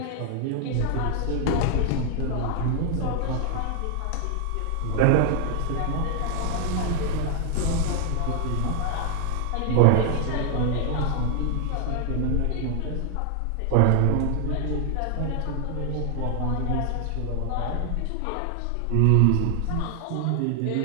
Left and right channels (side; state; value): both; different; correlation 0.00